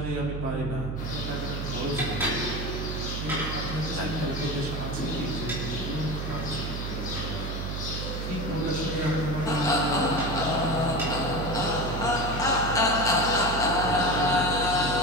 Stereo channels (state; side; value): noise; right; hum, 4 dB below the sound